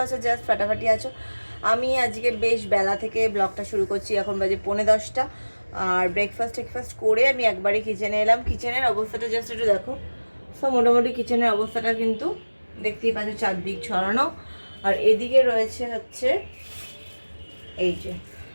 আছো, জাস্ট ফাটাফাটি আছো। আমি আজকে বেশ বেলা থেকে ব্লগটা শুরু করছি। এখন বাজে 9:45 আর ব্রেকফাস্ট করে আমি একবারই কিচেনে এলাম। কিচেনের অবস্থাটা জাস্ট একটু দেখো। সো মোটামুটি কিচেনের অবস্থাটা কিন্তু দেখতেই পাচ্ছ, চারদিক ছড়ানো। আর এদিকে রয়েছে হচ্ছে এই যে,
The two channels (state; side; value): inverted; both; correlation -1.00